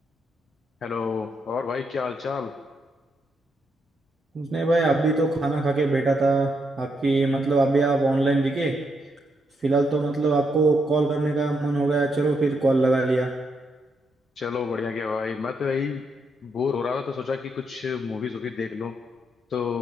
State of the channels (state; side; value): normal; both; correlation 0.79